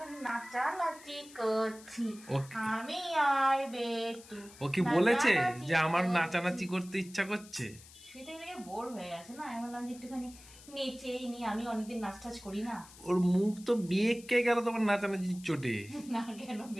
নাচানাচি করছি। আমি আর বেটু ও কি বলেছে নাচানাচি যে আমার করছি। নাচানাচি করতে ইচ্ছা করছে? শুয়ে থেকে থেকে বোর হয়ে গেছে না, আমি বললাম যে একটুখানি নেচেই নি, আমি অনেকদিন নাচ টাচ করি না। ওর মুখ তো বেঁকে গেল তোমার নাচানাচির চোটে। না কেন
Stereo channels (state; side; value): noise; left; hiss, 20 dB below the sound